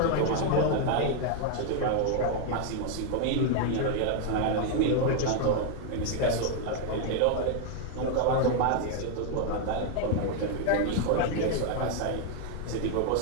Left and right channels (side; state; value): both; different; correlation 0.00